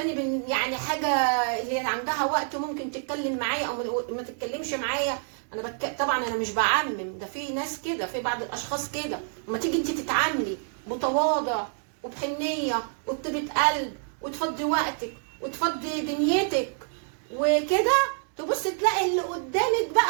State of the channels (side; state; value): left; silent; 60 dB below the other